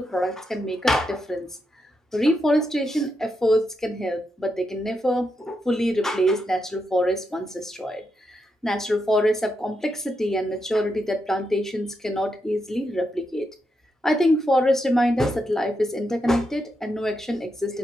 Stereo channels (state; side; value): normal; both; correlation 0.84